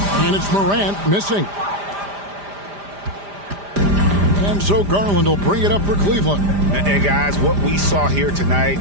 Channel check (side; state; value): left; late; 5.0 ms